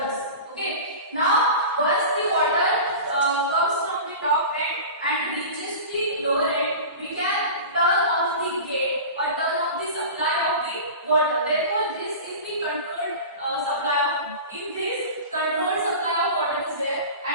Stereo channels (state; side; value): inverted; both; correlation -0.33